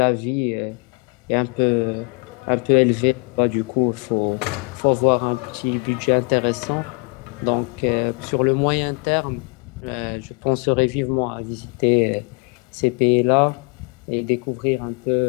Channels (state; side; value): quieter; right; 32.5 dB